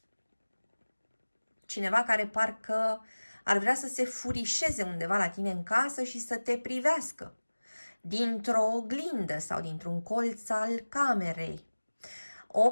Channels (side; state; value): both; inverted; correlation -1.00